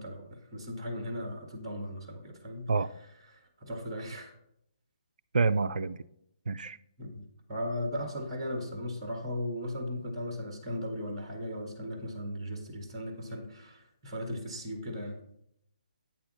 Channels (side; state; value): both; inverted; correlation -0.78